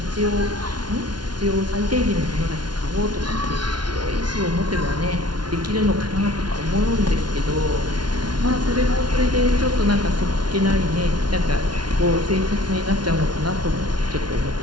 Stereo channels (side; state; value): left; late; 0.70 ms